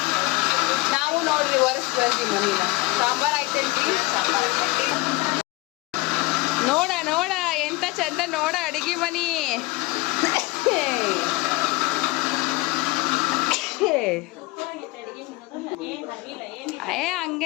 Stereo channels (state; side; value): quieter; right; 21.8 dB